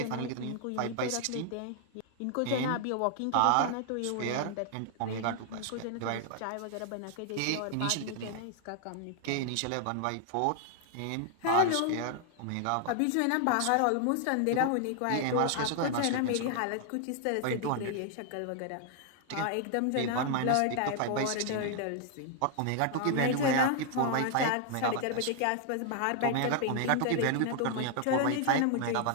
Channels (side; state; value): both; different; correlation 0.00